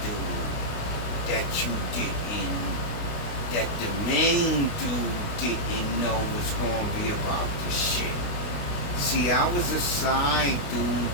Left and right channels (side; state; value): right; late; 29 ms